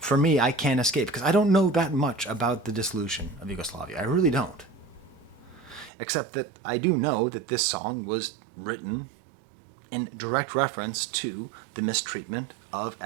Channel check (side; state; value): left; drops out; at 5.9 s